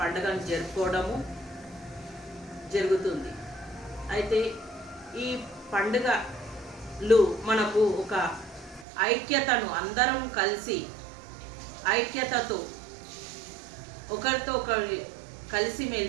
పండుగను జరుపుకోవడము జరుగుతుంది. అయితే ఈ పండుగలు మనకు ఒక ఐక్యతను, అందరం కలిసి ఐక్యతతో ఒకరితో ఒకరి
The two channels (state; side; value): drops out; left; at 8.8 s